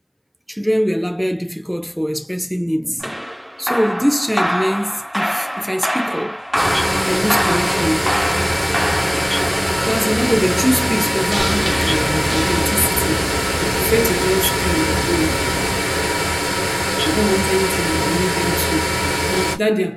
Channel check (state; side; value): identical; both; correlation 1.00